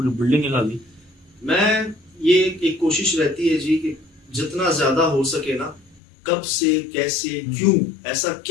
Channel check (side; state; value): right; drops out; at 6.0 s